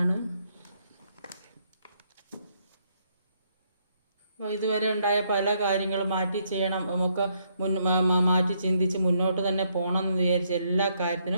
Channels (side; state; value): both; inverted; correlation -0.73